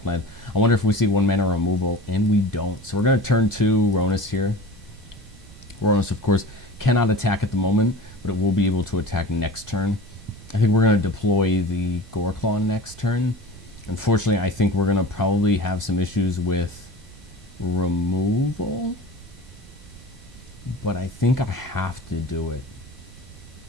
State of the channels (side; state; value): both; normal; correlation 0.35